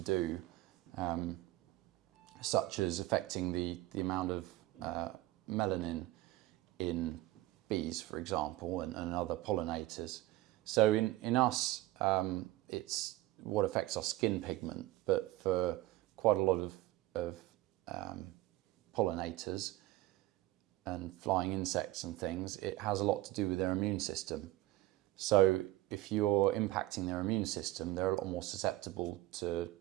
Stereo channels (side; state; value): left; quieter; 17.2 dB